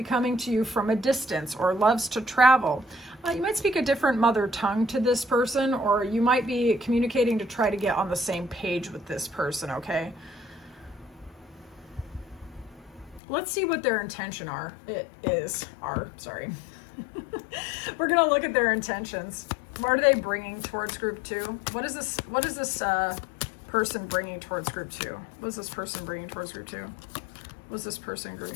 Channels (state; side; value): drops out; right; at 13.2 s